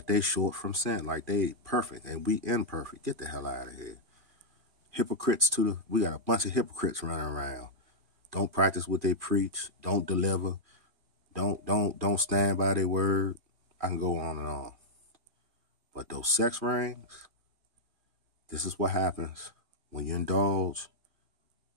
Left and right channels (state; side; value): late; left; 2.4 ms